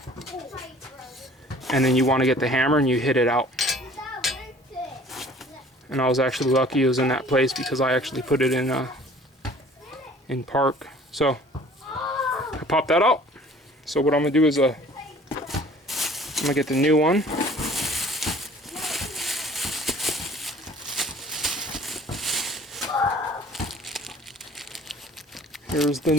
and then you want to get the hammer and you hit it out. And I was actually lucky it was in that place because I actually put it in park. So I popped that out. So what I'm gonna do is I'm gonna get the new one. Here's the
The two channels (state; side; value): normal; both; correlation 0.51